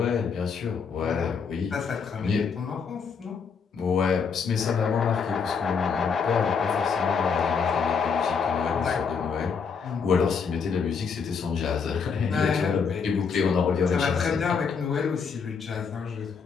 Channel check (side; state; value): right; quieter; 5.9 dB